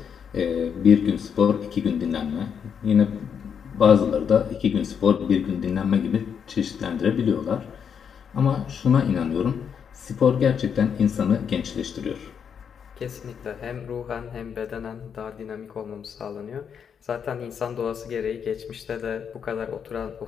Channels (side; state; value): right; quieter; 7.3 dB